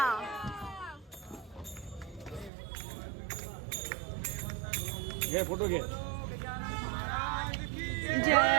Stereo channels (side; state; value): left; drops out; at 2.5 s